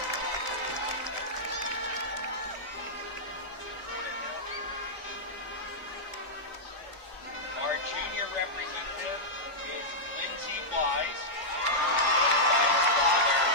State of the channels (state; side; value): normal; both; correlation -0.09